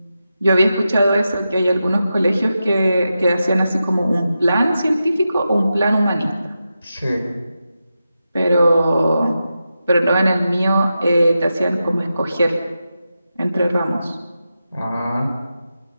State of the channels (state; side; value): inverted; both; correlation -0.90